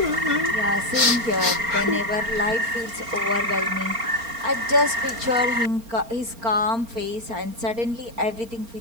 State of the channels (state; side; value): late; left; 4.3 ms